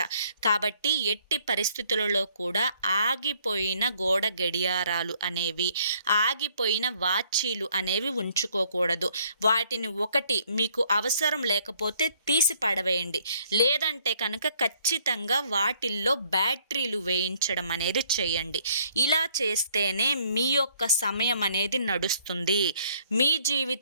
కాబట్టి ఎట్టి పరిస్థితులలో కూడా ఆగిపోయిన గోడ గడియారాలు అనేవి, ఆగిపోయిన వాచీలు అనేవి ఉంచుకోకూడదు. వాటిని ఒకటి మీకు అవసరం లేకపోతే తీసి పడవేయండి. లేదంటే కనుక ఖచ్చితంగా వాటిల్లో బ్యాటరీలు వేయించడం అనేది చేయండి. ఇలా చేస్తేనే మీ యొక్క సమయం అనేది నడుస్తుంది. మీ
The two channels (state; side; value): inverted; both; correlation -0.64